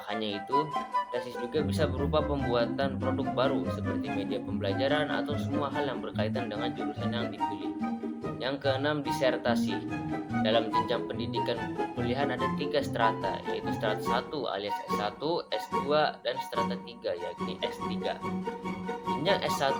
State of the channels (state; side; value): identical; both; correlation 1.00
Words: hanya itu, tesis juga bisa berupa pembuatan produk baru seperti media pembelajaran atau semua hal yang berkaitan dengan jurusan yang dipilih. Yang keenam, disertasi. Dalam jenjang pendidikan perkuliahan ada 3 strata, yaitu strata 1 alias S1, S2, dan strata 3 yakni S3. Jenjang